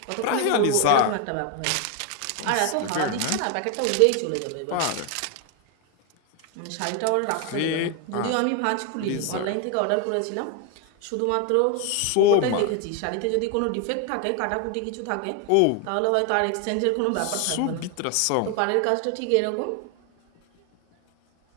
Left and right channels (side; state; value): both; different; correlation 0.01